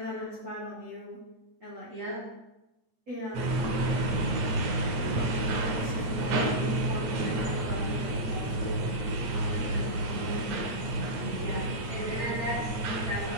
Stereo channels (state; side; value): late; left; 8.7 ms